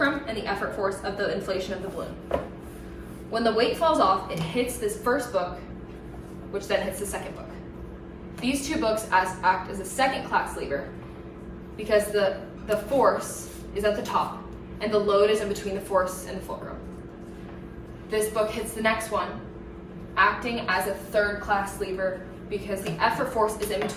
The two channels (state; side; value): identical; both; correlation 1.00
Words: and the effort force of the inflation of the balloon. When the weight falls off, it hits this first book, which then hits the second book. These two books act as a second class lever because the force is at the top and the load is in between the force and the fulcrum. This book hits the next one, acting as a third class lever because the effort force is in